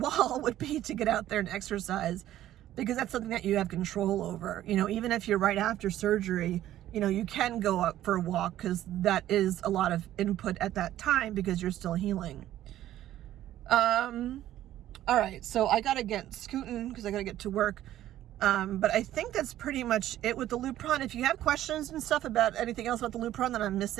would be to get out there and exercise, because that's something that you have control over. You know, even if you're right after surgery, you know, you can go up for a walk because that is a lot of input at that time because you're still healing. All right, so I gotta get scooting because I gotta get to work. But I think that's pretty much it with the Lupron. If you have questions and stuff about anything else about the Lupron that I'm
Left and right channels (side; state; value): left; quieter; 13.1 dB